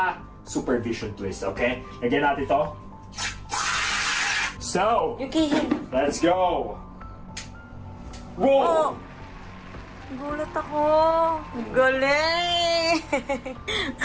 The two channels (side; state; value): both; identical; correlation 1.00